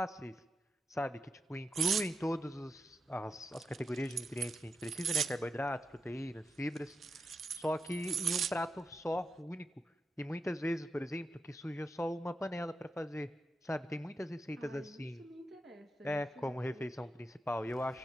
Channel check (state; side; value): normal; both; correlation 0.87